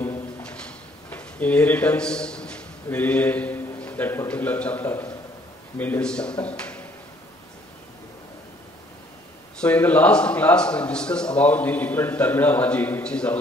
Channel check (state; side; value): normal; both; correlation 0.61